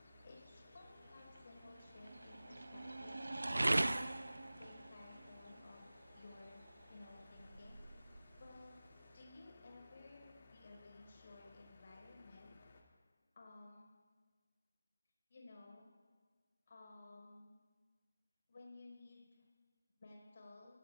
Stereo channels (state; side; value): inverted; both; correlation -0.99